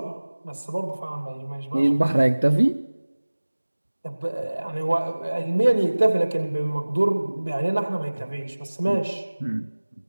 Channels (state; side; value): inverted; both; correlation -1.00